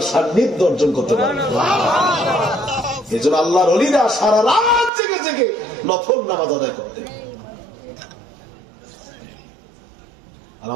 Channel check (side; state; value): left; drops out; at 4.9 s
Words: সান্নিধ্য অর্জন করতে পারবে। এই জন্য আল্লাহর ওলিরা সারা রাত জেগে জেগে নফল নামাজ আদায় করতে। আর